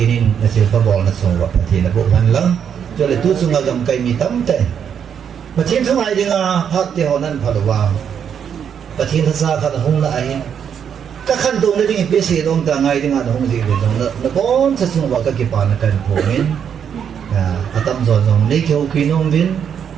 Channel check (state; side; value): quieter; left; 8.0 dB